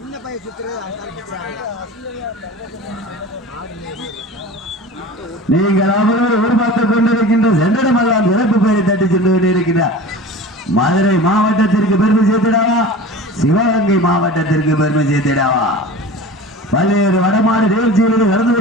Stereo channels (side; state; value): both; normal; correlation 0.36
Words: நீங்கள் அவர்கள் எதிர்பார்த்துக் கொண்டிருக்கின்ற சென்றடமெல்லாம் சிறப்பு பெயரை தட்டி சென்று கொண்டிருக்கிறார். மதுரை மாவட்டத்திற்கு பெருமை சேர்த்திடாவா, சிவகங்கை மாவட்டத்திற்கு பெருமை சேர்த்திடாவா? பல்வேறு வடமாடு நிகழ்ச்சிகளில் கலந்து